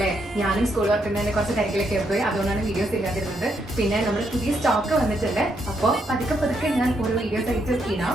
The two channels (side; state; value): both; normal; correlation 0.77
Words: ഞാനും സ്കൂൾ വർക്കുന്നതിന് കുറച്ച് തിരക്കിലൊക്കെ പോയി, അതുകൊണ്ടാണ് വീഡിയോസ് ഇല്ലാതിരുന്നത്. പിന്നെ നമ്മുടെ പുതിയ സ്റ്റോക്ക് വന്നിട്ടുണ്ട്. അപ്പോൾ പതുക്കെ ഞാൻ ഓരോ വീഡിയോസ് ആയിട്ട് ഇടാം.